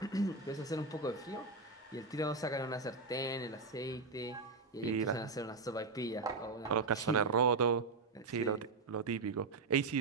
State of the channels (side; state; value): left; quieter; 4.0 dB